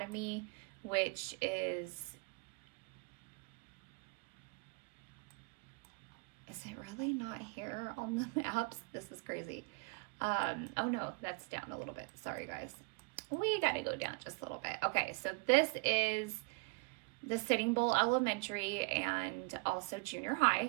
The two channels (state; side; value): quieter; left; 29.1 dB